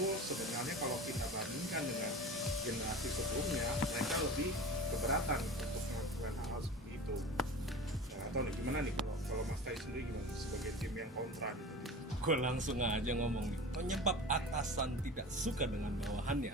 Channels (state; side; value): normal; both; correlation 0.35